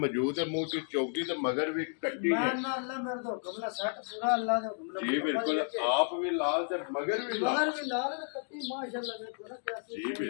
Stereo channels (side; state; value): right; silent; 56 dB below the other